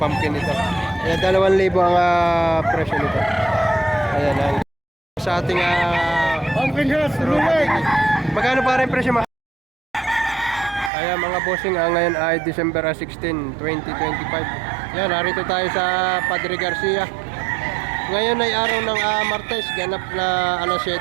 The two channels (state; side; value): drops out; left; at 10.9 s